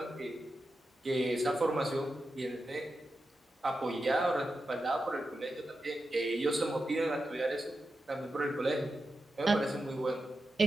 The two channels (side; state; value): both; normal; correlation 0.90